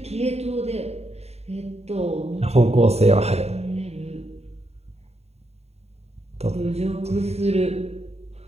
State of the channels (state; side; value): late; left; 0.30 ms